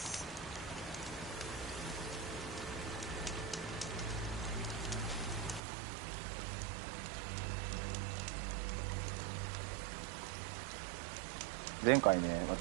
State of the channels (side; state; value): left; drops out; at 5.6 s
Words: 前回ね、